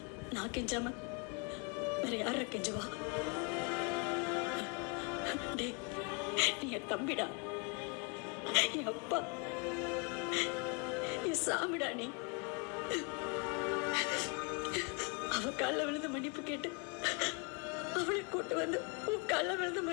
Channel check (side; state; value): right; quieter; 32.5 dB